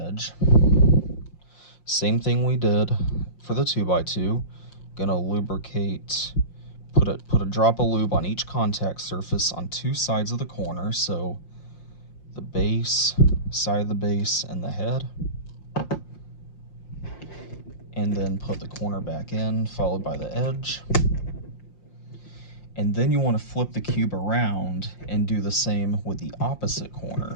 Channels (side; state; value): right; late; 5.7 ms